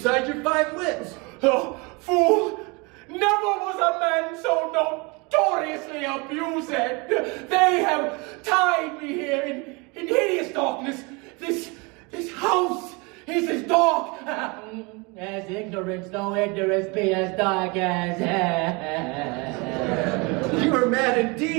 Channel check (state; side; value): quieter; left; 28.4 dB